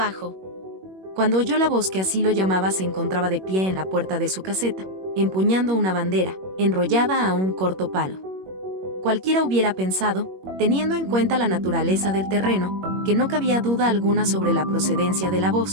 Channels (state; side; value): late; left; 21 ms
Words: Cuando oyó la voz que así lo llamaba, se encontraba de pie en la puerta de su caseta, empuñando una bandera, enrollada a un corto palo. Cualquiera hubiera pensado, teniendo en cuenta la naturaleza del terreno, que no cabía duda alguna sobre la procedencia de la